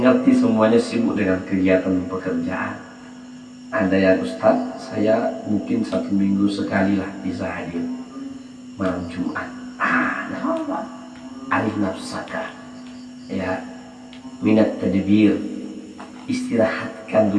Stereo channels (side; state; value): both; identical; correlation 1.00